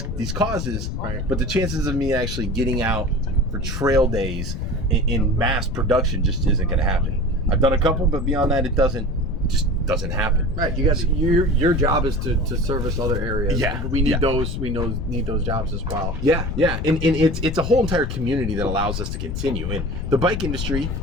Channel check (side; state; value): left; noise; rumble, 4 dB below the sound